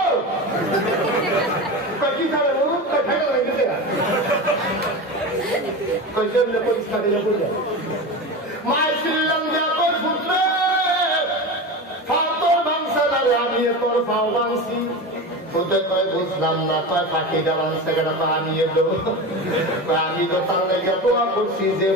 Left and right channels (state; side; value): normal; both; correlation 0.25